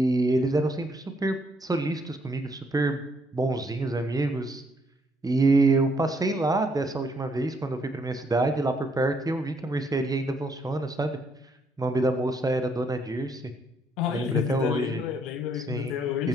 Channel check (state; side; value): normal; both; correlation 0.70